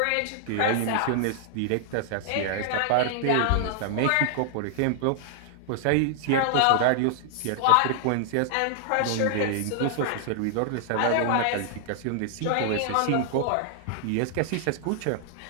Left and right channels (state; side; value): different; both; correlation 0.00